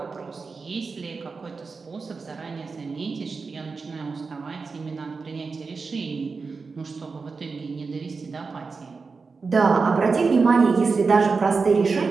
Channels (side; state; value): left; quieter; 4.6 dB